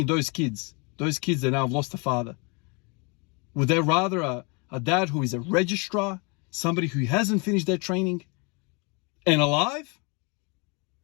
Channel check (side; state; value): right; quieter; 31.7 dB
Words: those kids that now have lost a father, would they rather a dad who is a registrar, somebody who hasn't finished their training and alive,